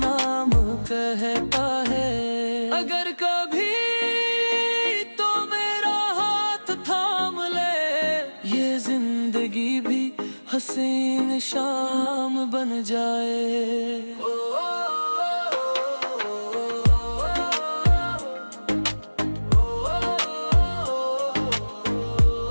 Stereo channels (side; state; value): both; inverted; correlation -1.00